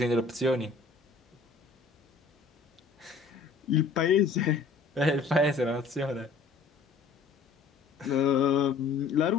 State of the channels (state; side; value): quieter; right; 4.5 dB